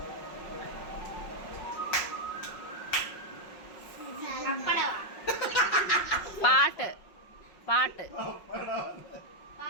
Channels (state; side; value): late; right; 5.5 ms